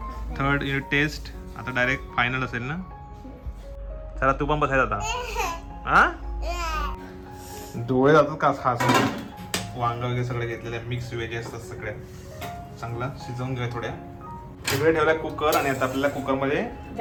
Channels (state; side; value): identical; both; correlation 1.00